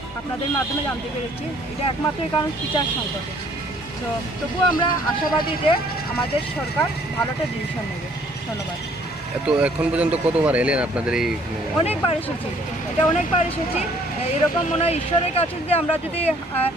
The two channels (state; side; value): normal; both; correlation 0.60